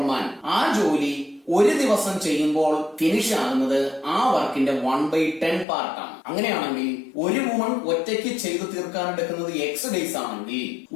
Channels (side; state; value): right; drops out; at 5.7 s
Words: man, ആ ജോലി ഒരു ദിവസം ചെയ്യുമ്പോൾ ഫിനിഷ് ആകുന്നത് ആ വർക്കിന്റെ 1/10 പാർട്ടാണ്. അങ്ങനെയാണെങ്കിൽ ഒരു വുമൺ ഒറ്റയ്ക്ക് ചെയ്തു തീർക്കാൻ എടുക്കുന്നത് എക്സ് ഡേയ്സ് ആണെങ്കിൽ,